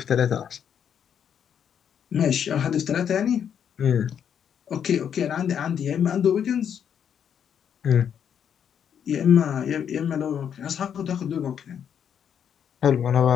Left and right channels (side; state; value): right; quieter; 8.4 dB